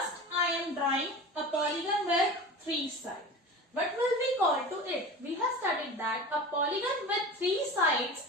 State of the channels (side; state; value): both; normal; correlation 0.33